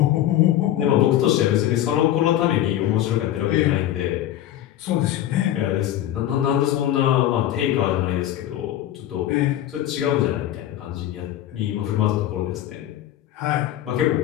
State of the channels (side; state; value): right; quieter; 12.6 dB